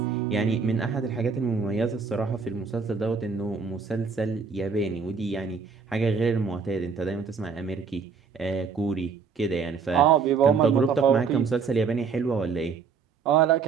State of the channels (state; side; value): quieter; left; 5.5 dB